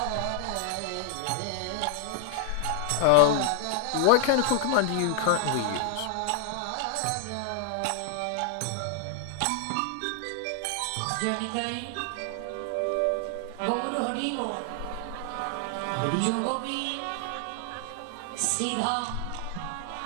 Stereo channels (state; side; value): different; both; correlation 0.00